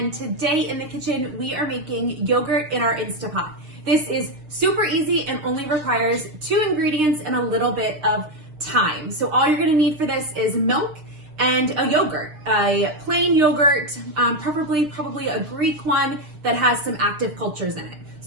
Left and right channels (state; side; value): late; left; 6.7 ms